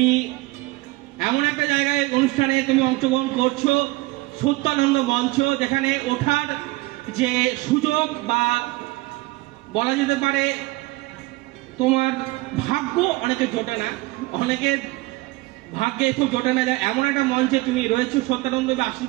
এমন একটা জায়গায় অনুষ্ঠানে তুমি অংশগ্রহণ করছো, সত্যানন্দ মঞ্চ, যেখানে ওঠার যে সুযোগ বা বলা যেতে পারে তোমার ভাগ্য অনেকে জোটে না, অনেকের ভাগ্যে খুব জোটে না, যায় এমন একটা মঞ্চে তুমি রয়েছো, সত্যানন্দের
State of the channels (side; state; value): left; quieter; 21.4 dB